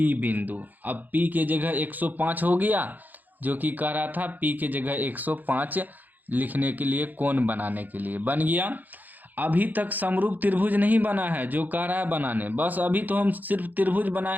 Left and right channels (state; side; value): late; left; 0.084 ms